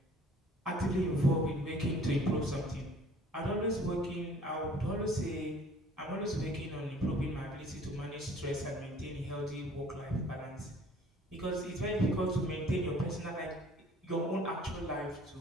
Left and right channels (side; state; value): both; normal; correlation 0.52